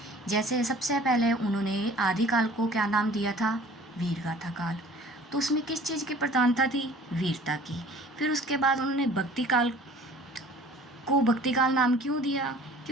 जैसे सबसे पहले उन्होंने आदिकाल को क्या नाम दिया था, वीरगाथा काल। तो उसमें किस चीज़ की प्रधानता थी, वीरता की। फिर उसके बाद उन्होंने भक्ति काल को भक्ति काल नाम क्यों दिया,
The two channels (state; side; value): normal; both; correlation 0.49